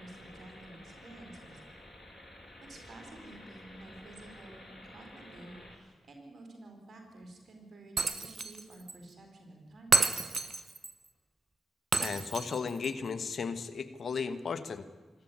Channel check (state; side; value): normal; both; correlation 0.84